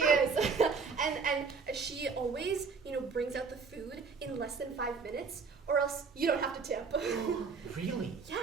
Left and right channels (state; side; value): quieter; left; 5.0 dB